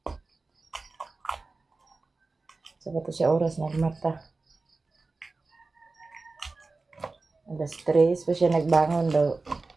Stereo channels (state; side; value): quieter; left; 3.6 dB